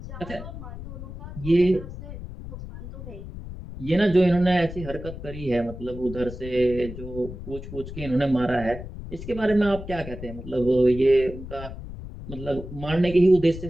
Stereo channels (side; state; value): left; noise; rumble, 11 dB below the sound